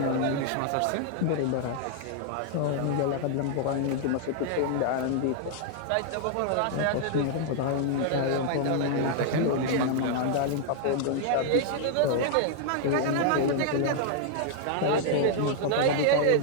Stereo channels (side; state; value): both; different; correlation -0.01